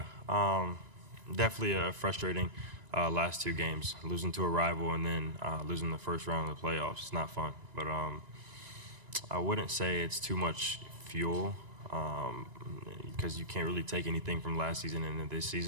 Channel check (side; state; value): left; late; 1.9 ms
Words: definitely frustrating last 2 games. Losing to a rival and then losing the first round of the playoffs. It's not fun. But I wouldn't say it's too much fuel because you can't really take anything from last season into this